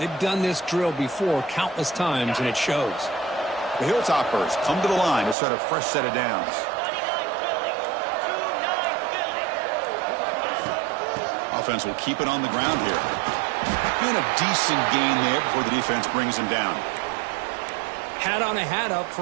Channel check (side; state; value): left; drops out; at 5.4 s